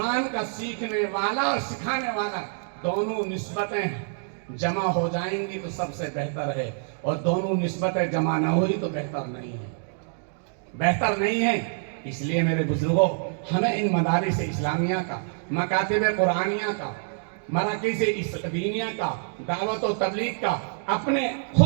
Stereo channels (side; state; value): left; silent; digital silence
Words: کا سیکھنے والا اور سکھانے والا، دونوں نسبتیں جمع ہو جائیں گی تو سب سے بہتر ہے، اور دونوں نسبتیں جمع نہ ہوئی تو بہتر نہیں ہے۔ اس لیے میرے بزرگوں، ہمیں ان مدارس اسلامیہ کا، مکاتب قرآنیہ کا، مراکز دینیہ کا، دعوت و تبلیغ کا، اپنے